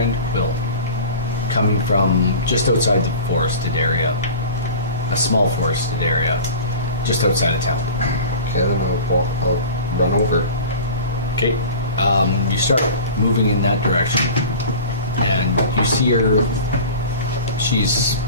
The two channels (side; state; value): both; inverted; correlation -0.37